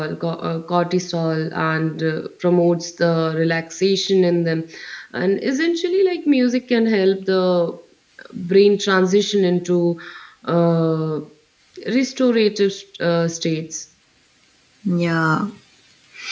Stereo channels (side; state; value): both; identical; correlation 1.00